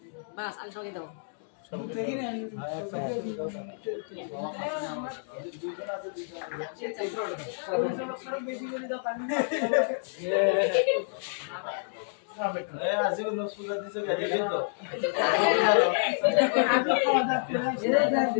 বাস আমি সবাইকে দেবো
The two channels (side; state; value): right; silent; digital silence